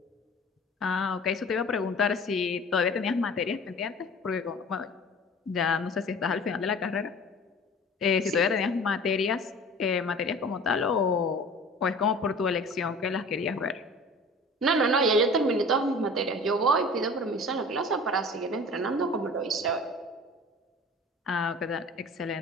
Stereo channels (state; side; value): normal; both; correlation 0.42